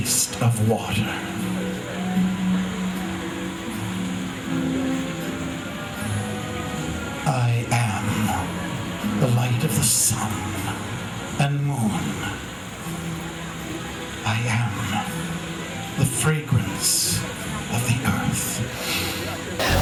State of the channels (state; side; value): identical; both; correlation 1.00